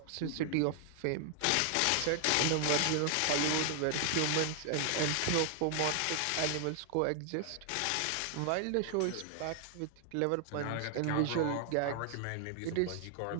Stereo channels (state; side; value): different; both; correlation 0.00